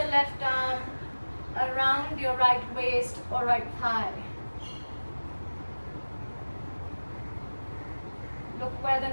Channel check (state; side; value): inverted; both; correlation -1.00